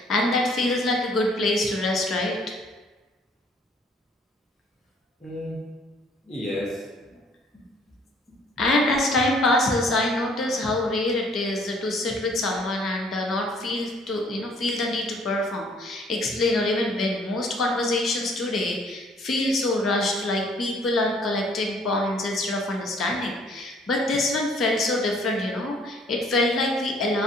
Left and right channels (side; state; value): both; normal; correlation 0.59